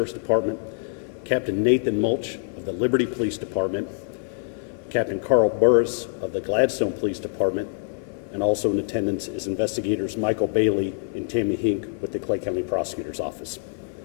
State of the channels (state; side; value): silent; right; digital silence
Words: Department, Captain Nathan Mulch of the Liberty Police Department, Captain Carl Burris of the Gladstone Police Department, and also in attendance is investigators Michael Bailey and Tammy Hink with the Clay County Prosecutor's Office.